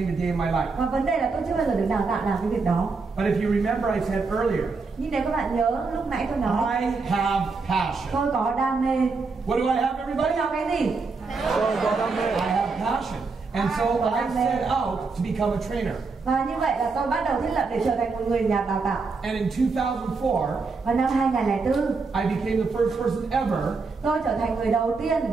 a day in my life. Và vấn đề là tôi chưa bao giờ được đào tạo làm cái việc đó. But if you remember, I said earlier, Nhưng nếu các bạn nhớ lúc nãy tôi nói I have passion. tôi có đam mê. What do I have, Tôi everybody? có cái gì? I have passion. And so I set out to become a trainer. Và như vậy là tôi bắt đầu thiết lập để trở thành một người nhà đào tạo. And in 2004, Vào năm 2004, I became the first person ever tôi trở thành người đầu tiên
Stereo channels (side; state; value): left; quieter; 4.3 dB